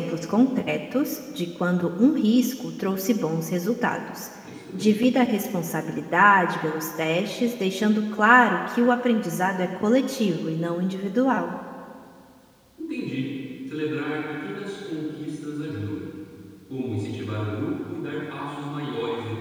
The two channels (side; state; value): both; identical; correlation 1.00